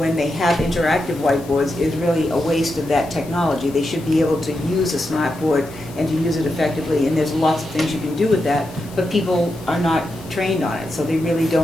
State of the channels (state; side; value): noise; left; hiss, 21 dB below the sound